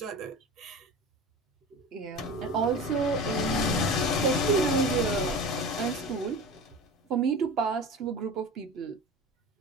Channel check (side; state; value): both; normal; correlation 0.33